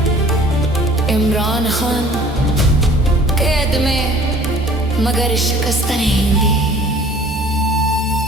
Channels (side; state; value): both; normal; correlation 0.50